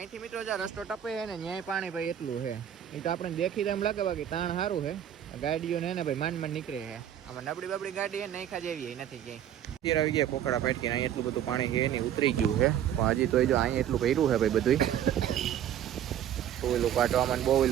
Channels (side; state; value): left; quieter; 10.4 dB